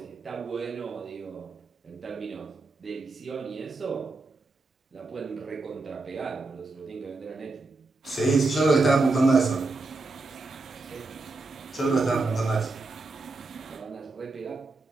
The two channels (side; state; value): left; quieter; 3.5 dB